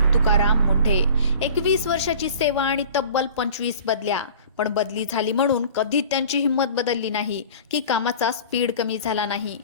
तुकाराम मुंढे. 21 वर्षाची सेवा आणि तब्बल 25 बदल्या. पण बदली झाली म्हणून कधीच त्यांची हिंमत बदलली नाही की कामाचा स्पीड कमी झाला नाही.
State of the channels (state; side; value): inverted; both; correlation -0.43